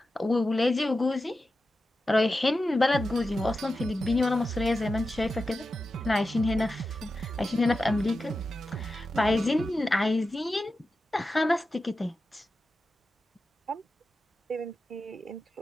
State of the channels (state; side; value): normal; both; correlation 0.92